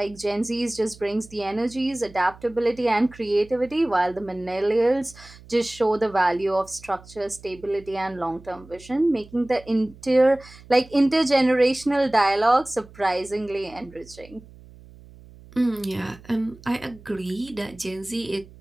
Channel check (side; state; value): right; noise; hum, 21 dB below the sound